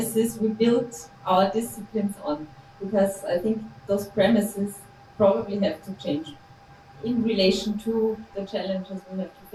we built our disciplines on, because I think those premises probably have to change in relation to the challenges we have to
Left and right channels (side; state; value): both; identical; correlation 1.00